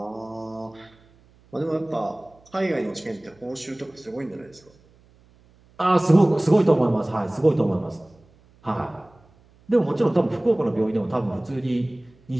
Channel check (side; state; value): right; noise; hum, 30 dB below the sound